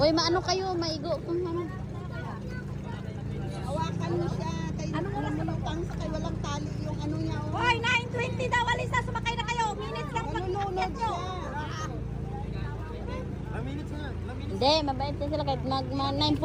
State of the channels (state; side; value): identical; both; correlation 1.00